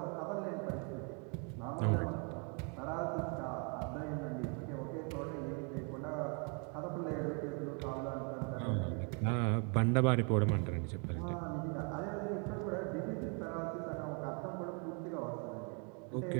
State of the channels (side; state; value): left; quieter; 36.9 dB